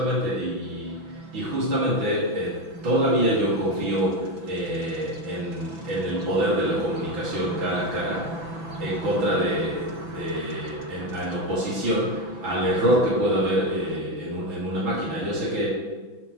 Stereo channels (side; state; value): left; late; 6.0 ms